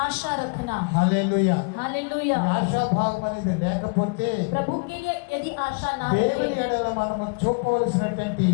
आशा रखना. హల్లెలూయా. हालेलुया. ఈ ఆశాభావం అనేది లేకపోతే प्रभु के लिए यदि आशा ना దేవుని रहे, ఎడల మనము చూపవలసినటువంటి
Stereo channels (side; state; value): right; quieter; 34.6 dB